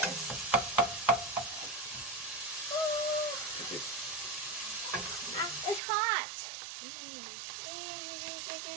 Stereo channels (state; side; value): drops out; left; at 5.8 s